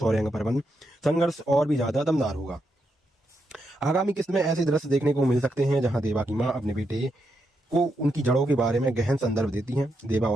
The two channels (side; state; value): both; normal; correlation 0.82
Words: पर्वन संघर्ष और भी ज्यादा दमदार होगा। आगामी किस्त में ऐसे दृश्य देखने को मिल सकते हैं जहां देवा की मां अपने बेटे को उनकी जड़ों के बारे में गहन संदर्भ देती हैं। देवा